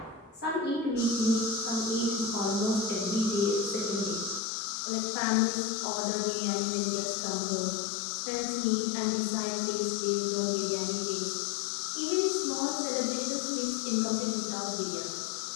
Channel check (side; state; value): right; drops out; at 4.4 s